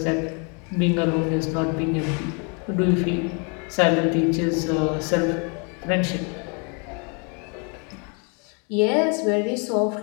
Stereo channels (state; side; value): quieter; right; 35.9 dB